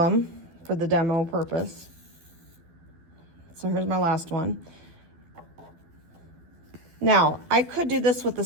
for the demo purpose. So here's my last one. Now, I could do this with the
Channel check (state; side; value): late; left; 12 ms